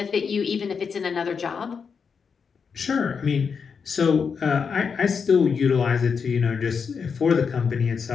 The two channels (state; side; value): quieter; right; 6.0 dB